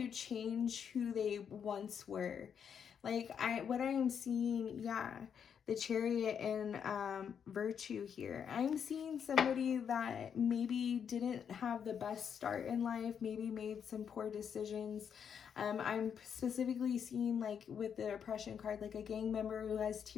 change who they once were. Like what I am seeing, yeah, the Chariot and Virtue here. I'm seeing somebody that maybe didn't have the best start in life, maybe made some poor decisions. I'm specifically seeing, like with the Oppression card, like a gang member who has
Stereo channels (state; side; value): quieter; right; 7.6 dB